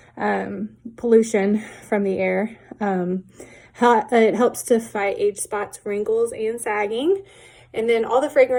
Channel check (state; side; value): identical; both; correlation 1.00